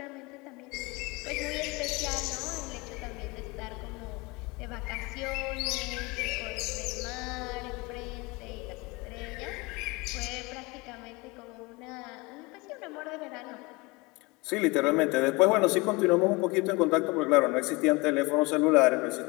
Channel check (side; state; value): right; quieter; 25.2 dB